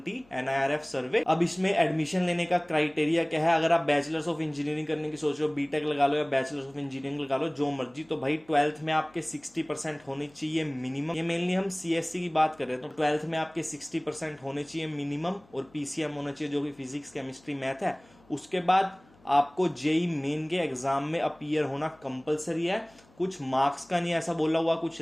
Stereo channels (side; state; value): left; noise; hum, 29 dB below the sound